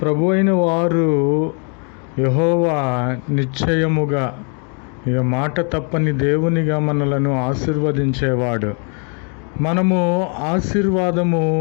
ప్రభు అయిన వారు యెహోవా నిశ్చయముగా, ఇక మాట తప్పని దేవునిగా మనలను ఆశీర్వదించేవాడు. మనము ఆశీర్వాదము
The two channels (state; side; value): quieter; right; 39.5 dB